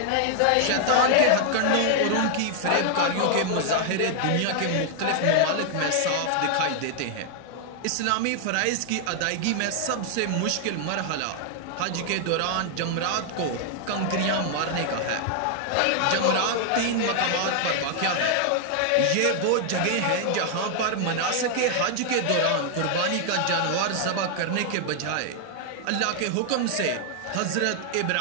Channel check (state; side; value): different; both; correlation 0.00